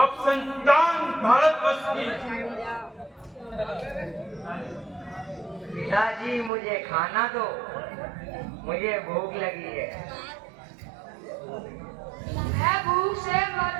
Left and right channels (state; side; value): drops out; left; at 6.5 s